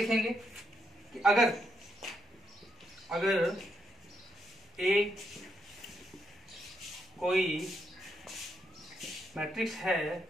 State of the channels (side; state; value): both; normal; correlation 0.78